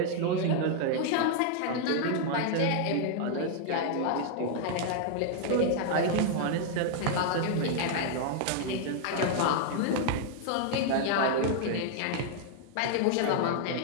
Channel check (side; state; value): both; different; correlation 0.00